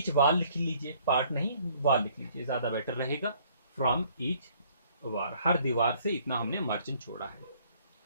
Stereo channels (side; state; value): both; inverted; correlation -0.61